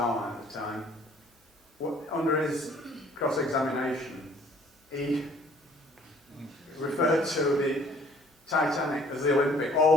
Line at the time, under his cross-examination, he referred to the Titanic as the Olympic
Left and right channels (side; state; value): both; normal; correlation 0.56